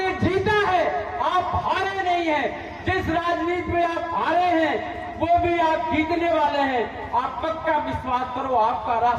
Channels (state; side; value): identical; both; correlation 1.00